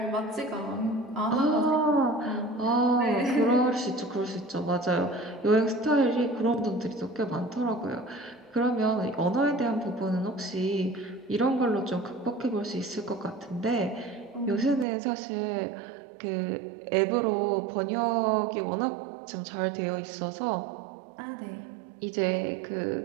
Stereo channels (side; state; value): left; drops out; at 14.9 s